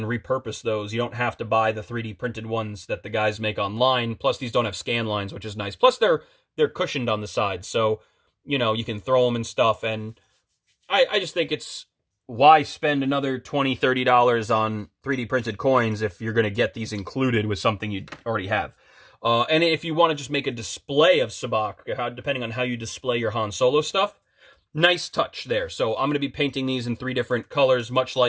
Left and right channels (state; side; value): identical; both; correlation 1.00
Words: repurpose those. You don't have to buy the 3D printed ones that the guys make online. Plus, these don't have scan lines, which is nice. Plus, they're cushioned on the sides, so you know you can throw them and stuff. And I just think it's, why spend another $20-$30 on 3D printed coins if you're going to get these included with something you already have. And if you want to just make a display of sabacc, depending on how you display your Han Solo stuff, nice touch there. So I'm going to be painting these in 3 different colors, much